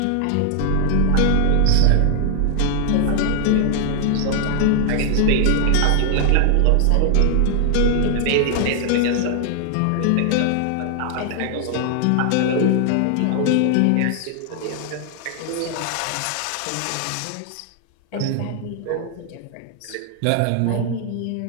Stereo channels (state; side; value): different; both; correlation 0.00